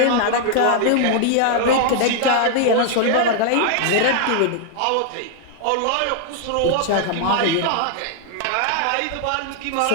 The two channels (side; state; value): both; different; correlation 0.00